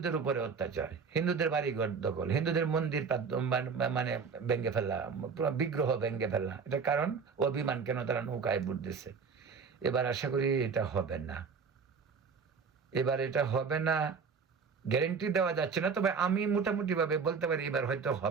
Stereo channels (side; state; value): left; quieter; 5.6 dB